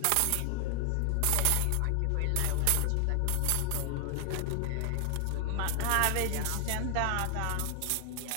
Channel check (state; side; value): different; both; correlation 0.00